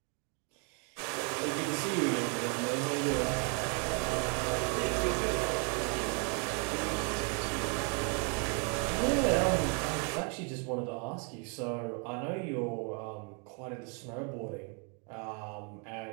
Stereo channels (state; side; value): quieter; left; 37.5 dB